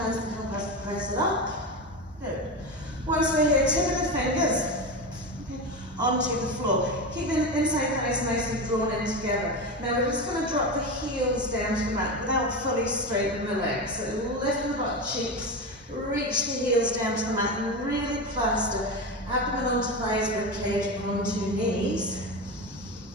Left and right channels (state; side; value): normal; both; correlation 0.20